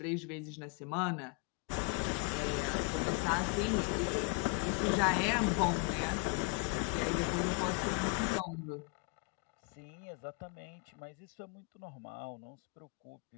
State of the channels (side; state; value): right; quieter; 30.7 dB